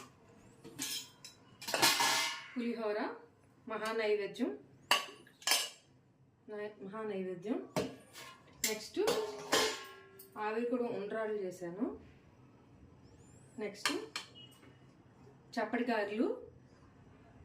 పులిహోర మహానైవేద్యం. నెక్స్ట్ ఆవిరి కూడా ఉండ్రాళ్ళు చేశాను. నెక్స్ట్ చప్పటి గారెలు.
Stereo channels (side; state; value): both; identical; correlation 1.00